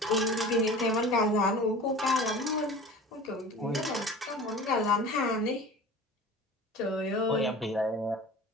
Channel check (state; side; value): normal; both; correlation 0.39